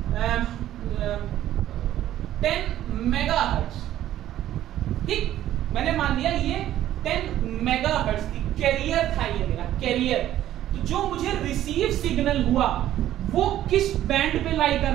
10 मेगाहर्ट्ज। ठीक, मैंने मान लिया ये 10 मेगाहर्ट्ज थी, कैरियर था ये मेरा कैरियर। तो जो मुझे रिसीव सिग्नल हुआ वो किस बैंड पे लाई कर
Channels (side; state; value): left; quieter; 12.7 dB